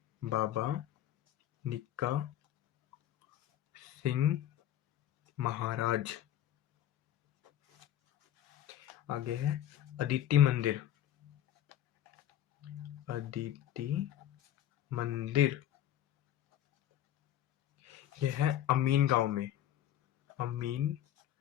बाबा निक्का सिंह महाराज। आगे है अदिति मंदिर, अदिति मंदिर, यह है अमीन गांव में, अमीन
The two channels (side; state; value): right; quieter; 11.7 dB